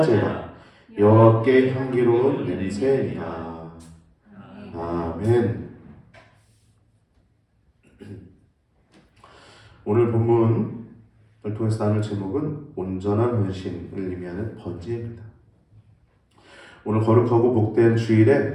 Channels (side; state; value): both; identical; correlation 1.00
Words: 여호와께 향기로운 냄새니라. 아멘. 오늘 본문을 통해서 나눌 제목은 온전한 헌신을 의미하는 번제입니다. 오늘 거룩하고 복된 주일에